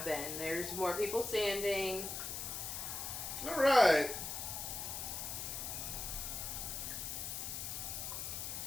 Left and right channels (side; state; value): left; noise; hiss, 4 dB below the sound